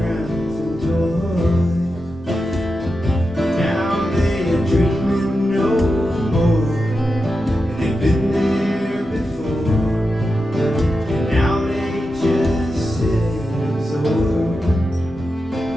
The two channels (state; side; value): normal; both; correlation 0.89